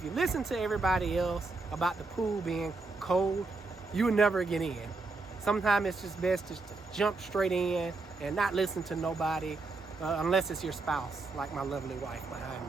you listen to everybody else about the pool being cold, you will never get in. Sometimes it's just best just to jump straight in and not listen to nobody, unless it's your spouse, like my lovely wife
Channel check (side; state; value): left; quieter; 3.7 dB